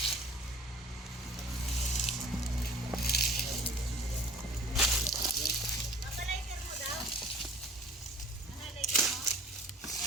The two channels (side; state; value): both; normal; correlation 0.48